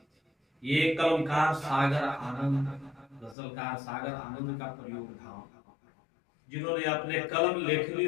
ये कलमकार सागर आनंद, गजलकार सागर आनंद का प्रयोग धाम, जिन्होंने अपने कलम लेखनी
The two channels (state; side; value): drops out; right; at 3.4 s